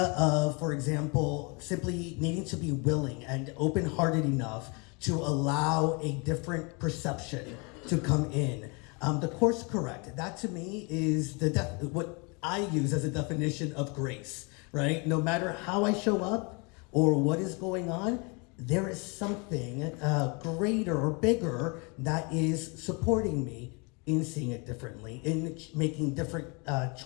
of, for example, simply needing to be willing and open-hearted enough to allow a different perception to come in. The Course correct. That to me is what I use as a definition of grace, right? No matter how I show up or what is going on, there is something greater or bigger that is supporting me in seeing it differently, in making different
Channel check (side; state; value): right; quieter; 31.2 dB